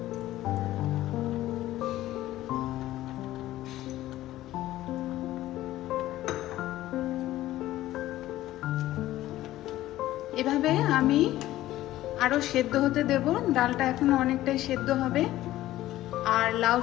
এভাবে আমি আরো সেদ্ধ হতে দেব। ডালটা এখন অনেকটাই সেদ্ধ হবে, আর লাউ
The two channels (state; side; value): quieter; right; 15.0 dB